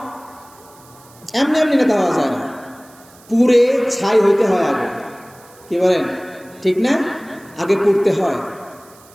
এমনি এমনি নেতা হওয়া যায় না, পুড়ে ছাই হইতে হয় আগে। কি বলেন, ঠিক না? আগে পুড়তে হয়,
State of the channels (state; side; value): noise; right; hiss, 26 dB below the sound